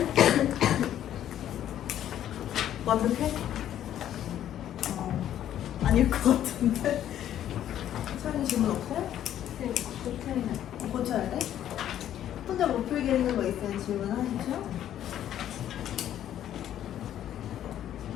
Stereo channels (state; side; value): quieter; right; 11.2 dB